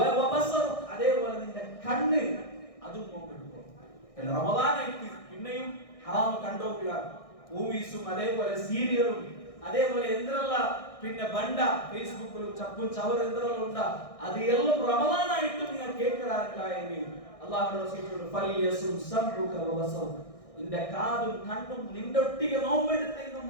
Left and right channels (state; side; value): late; right; 1.6 ms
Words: വബസറുക, അതേപോലെ നിന്റെ കണ്ണ് അതും നോമ്പെടുക്കും. റമദാനായിട്ട് പിന്നെയും ഹറാം കണ്ടോക്കുക. മൂവീസും അതേപോലെ സീരിയലും അതേപോലെ എന്തെല്ലാം പിന്നെ ബണ്ട ഫേസ്ബുക്കിലും ചപ്പും ചവർ എന്തെല്ലാം ഉണ്ടാ അത് എല്ലാം റമദാനായിട്ടും നിങ്ങൾ കേൾക്കാറില്ലെങ്കിൽ അല്ലാഹുവിന്റെ റസൂൽ ഫലിയസും സംഉക വബസറുക, നിന്റെ കാതും കണ്ണും നിന്റെ ഒട്ടിക നോമ്പെടുത്തെങ്കിൽ